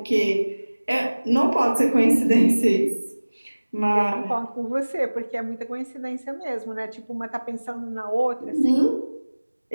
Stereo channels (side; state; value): both; inverted; correlation -1.00